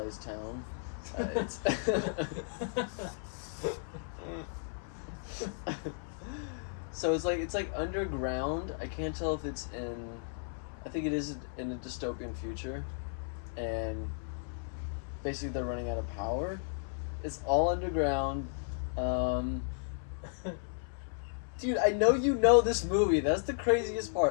town. It's so it's like underground. I can't tell if it's in. I think it is in a dystopian future, and basically they're running out of power. It's all underground. Dude, I know you know this movie. That's the craziest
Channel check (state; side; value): silent; right; 55 dB below the other